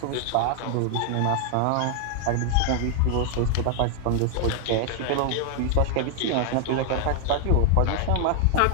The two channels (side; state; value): both; different; correlation 0.00